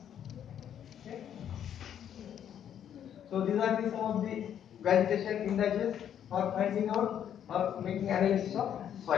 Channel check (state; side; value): quieter; right; 9.5 dB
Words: Okay. So these are the some of the vegetation indices for finding out or making analysis of